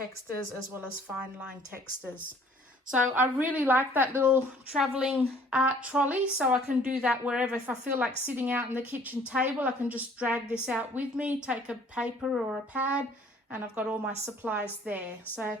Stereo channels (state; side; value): normal; both; correlation 0.56